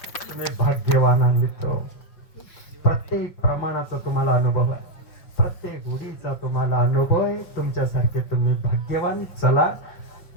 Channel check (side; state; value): right; late; 5.0 ms